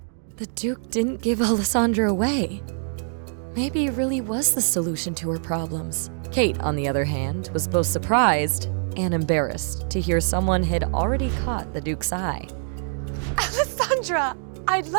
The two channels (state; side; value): silent; left; digital silence